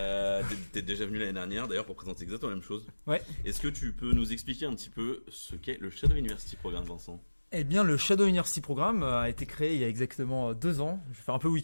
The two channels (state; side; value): inverted; both; correlation -1.00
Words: T'es déjà venu l'année dernière d'ailleurs pour présenter exactement la même chose. Ouais. Est-ce que tu peux nous expliquer un petit peu ce qu'est le Shadow University Programme, Vincent? Eh bien, le Shadow University Programme a été créé il y a exactement 2 ans. Je vais faire un peu